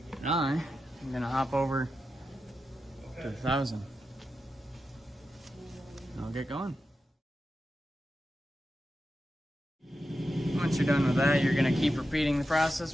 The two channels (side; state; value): both; normal; correlation 0.90